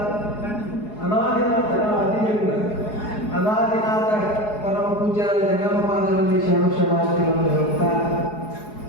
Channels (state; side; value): late; right; 4.8 ms